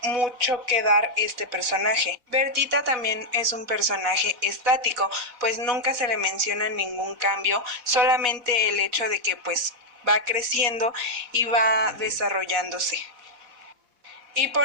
mucho que dar este personaje. Bertita también es un personaje estático, pues nunca se le menciona ningún cambio, solamente el hecho de que pues va creciendo y va desarrollándose. Y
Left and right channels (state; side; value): late; left; 4.1 ms